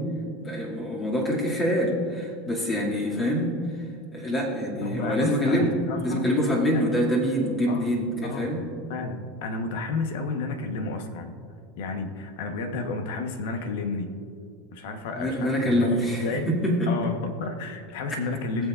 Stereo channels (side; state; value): both; normal; correlation 0.33